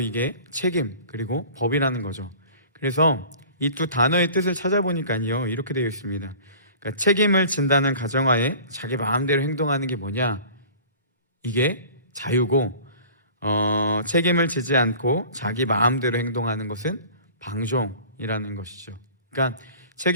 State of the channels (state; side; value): inverted; both; correlation -0.44